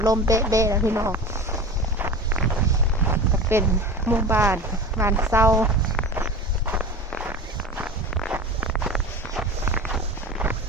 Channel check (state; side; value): normal; both; correlation 0.32